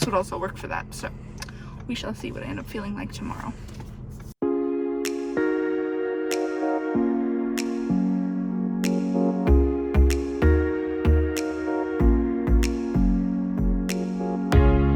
would also work for that, so we shall see what I end up feeling like tomorrow.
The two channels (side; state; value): both; identical; correlation 1.00